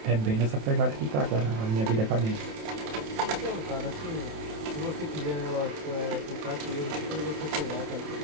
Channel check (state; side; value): late; left; 27 ms